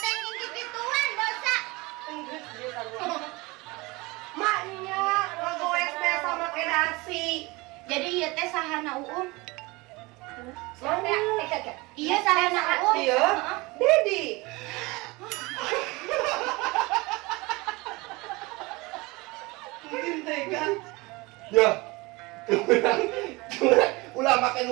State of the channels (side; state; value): left; quieter; 23.8 dB